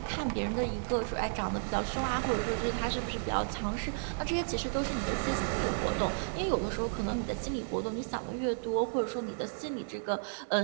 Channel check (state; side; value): silent; left; digital silence